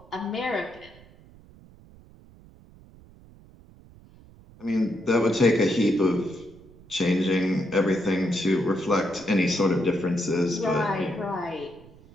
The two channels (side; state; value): right; noise; rumble, 24 dB below the sound